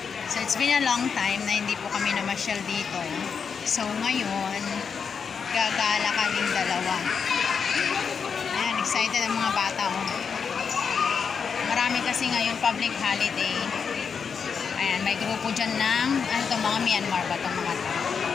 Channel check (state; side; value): quieter; right; 6.2 dB